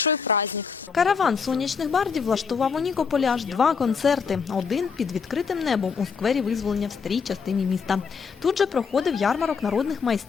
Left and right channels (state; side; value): quieter; right; 5.8 dB